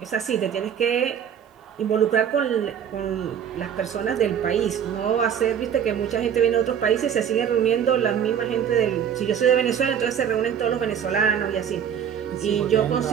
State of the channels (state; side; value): quieter; left; 8.5 dB